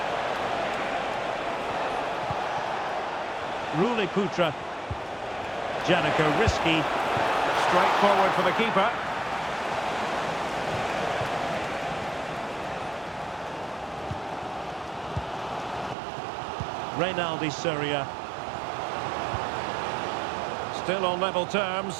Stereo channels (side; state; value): left; drops out; at 16.0 s